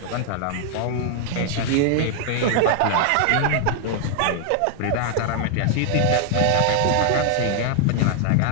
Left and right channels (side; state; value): both; different; correlation 0.00